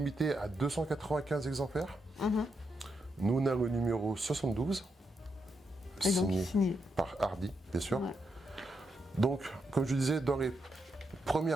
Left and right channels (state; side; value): normal; both; correlation 0.82